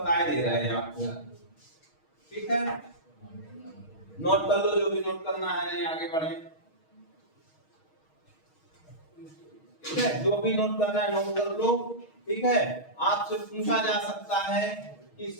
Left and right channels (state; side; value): late; right; 6.4 ms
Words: दे रहे हैं आपको। ठीक है, नोट कर लो जो भी नोट करना है, नहीं आगे बढ़े। ठीक है, जो भी नोट करना है नोट कर लो। ठीक है, आपसे पूछा जा सकता है कि